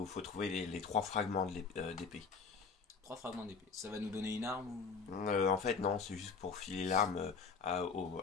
trouver les trois fragments d'épée. 3 fragments d'épée. Ça va nous donner une arme ou... En fait, non, c'est juste pour filer l'arme à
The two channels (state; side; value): quieter; right; 5.3 dB